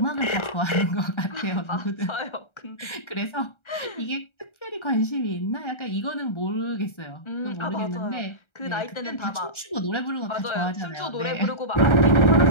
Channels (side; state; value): right; late; 1.3 ms